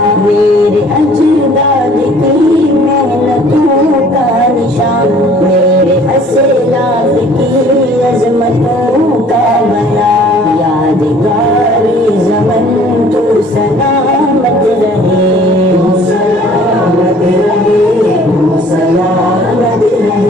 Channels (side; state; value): both; normal; correlation 0.54